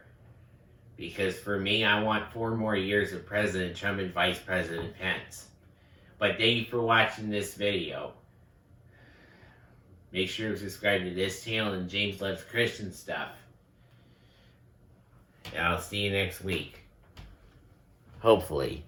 Because for me, I want 4 more years of President Trump and Vice President Pence. But thank you for watching this video. Make sure to subscribe to this channel and James Loves Christian Stuff. And I'll see you next week. Hopefully,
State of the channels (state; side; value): identical; both; correlation 1.00